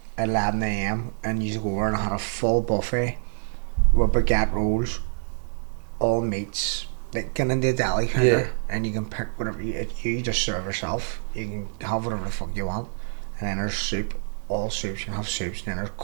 at 11 AM and used to go over and had a full buffet with baguette rolls, all meats, like get into the deli counter, and you can pick whatever you just serve yourself. You can have whatever the fuck you want, and then there's soup, all soups. You can have soups, and then there's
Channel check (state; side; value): silent; left; digital silence